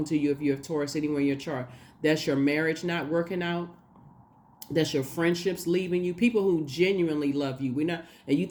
to you if you have Taurus anywhere in your chart. That's your marriage not working out. That's your friendships leaving you. People who genuinely love you. And you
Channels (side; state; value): both; identical; correlation 1.00